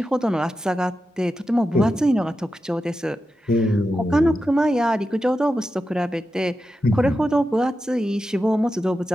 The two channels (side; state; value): both; normal; correlation 0.90